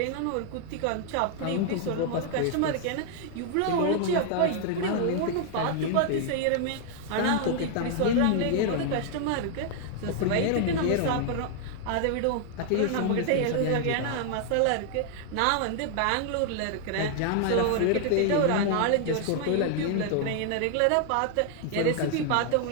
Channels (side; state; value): both; different; correlation 0.00